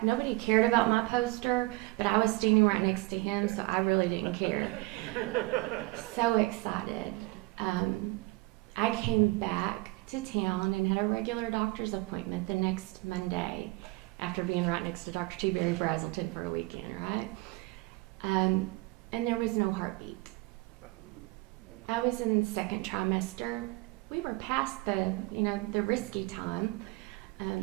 Nobody cared about my poster, but I was standing right next to him, so I really didn't care. So excited. I came back to town and had a regular doctor's appointment the next Monday after being right next to Dr. T. Barry Brazelton for a weekend, right? And there was no heartbeat. I was in the 2nd trimester. We were past the risky time.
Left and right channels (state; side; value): quieter; left; 22.7 dB